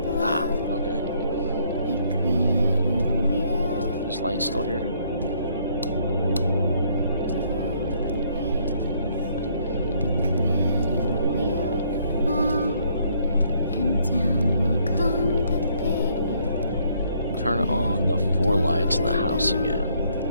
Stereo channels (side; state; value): both; inverted; correlation -0.67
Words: Ah, okay. Is light still here? Turn on the 4 lights in the house again.